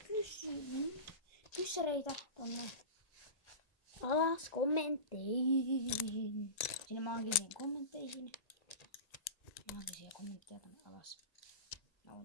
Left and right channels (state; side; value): late; right; 1.8 ms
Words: kyssäreitä tonne alas kommentteihin. Sinne maagisiin kommentteihin. Maagisia kommentteja tonne alas. Mä voin